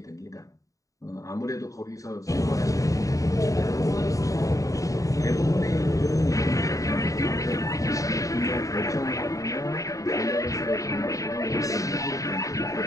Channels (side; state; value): right; late; 0.16 ms